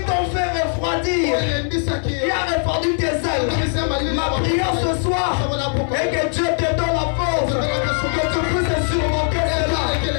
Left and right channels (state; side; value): silent; right; 66 dB below the other